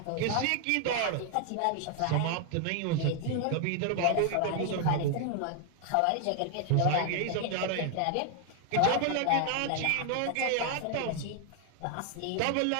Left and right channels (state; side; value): different; both; correlation 0.00